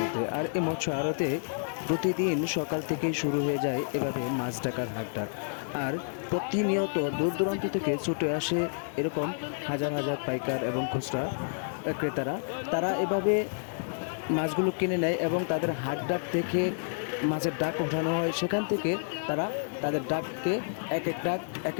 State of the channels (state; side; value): silent; right; 56 dB below the other